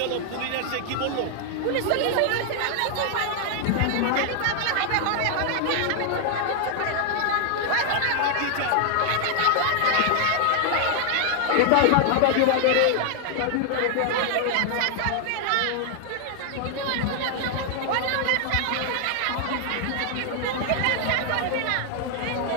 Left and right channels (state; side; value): different; both; correlation 0.00